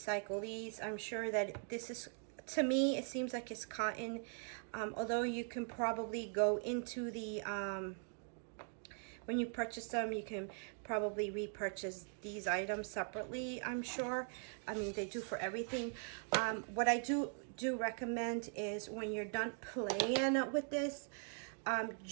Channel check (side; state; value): left; silent; 50 dB below the other